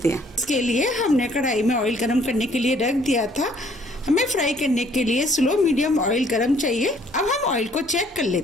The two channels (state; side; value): noise; right; hum, 28 dB below the sound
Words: हैं। इसके लिए हमने कढ़ाई में ऑयल गरम करने के लिए रख दिया था। हमें फ्राई करने के लिए स्लो मीडियम ऑयल गरम चाहिए। अब हम ऑयल को चेक कर